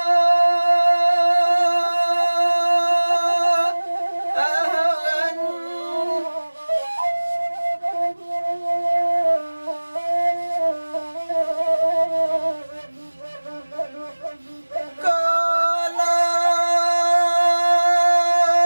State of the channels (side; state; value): both; inverted; correlation -1.00